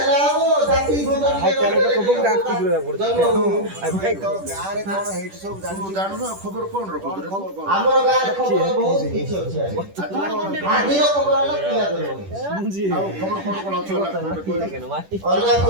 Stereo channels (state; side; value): late; left; 10 ms